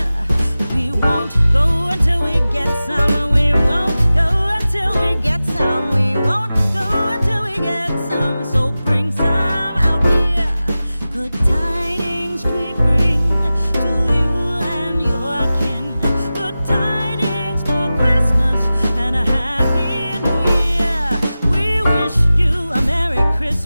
We won't go until we get some. We won't go until we get some. We won't go until we get some. So bring some out here. Good tidings we bring to you and your kin. Good tidings for Christmas and a Happy New Year. We wish you a Merry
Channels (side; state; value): both; inverted; correlation -0.95